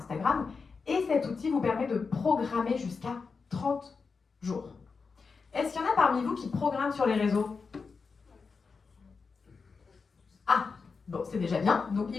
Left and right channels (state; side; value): quieter; right; 4.9 dB